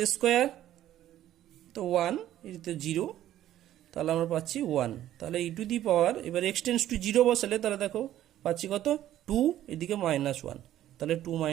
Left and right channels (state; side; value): quieter; left; 12.7 dB